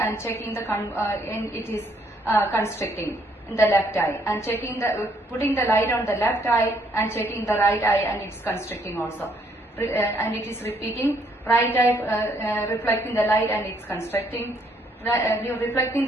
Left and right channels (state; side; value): normal; both; correlation 0.68